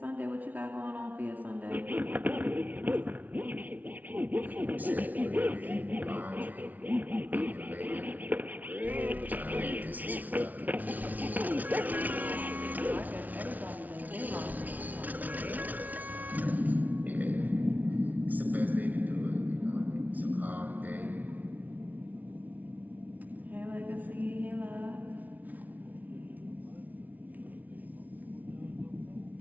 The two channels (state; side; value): late; left; 0.077 ms